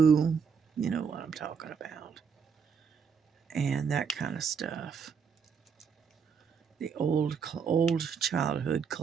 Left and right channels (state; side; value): quieter; left; 6.4 dB